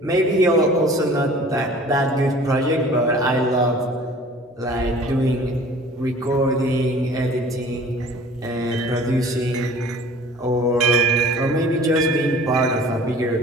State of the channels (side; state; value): both; normal; correlation 0.47